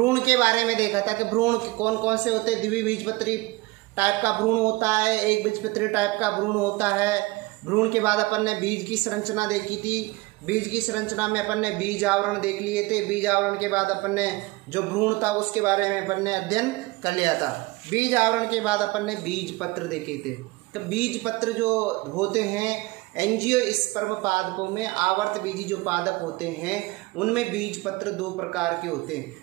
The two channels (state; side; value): quieter; left; 22.2 dB